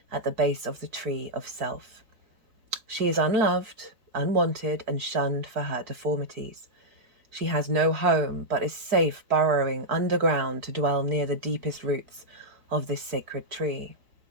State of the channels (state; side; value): late; left; 4.5 ms